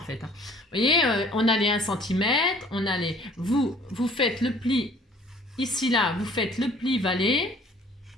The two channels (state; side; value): normal; both; correlation 0.54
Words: Hein. Vous voyez, on a les 1 cm, on a les... Vous faites le pli, ici, là, vous faites le pli valet,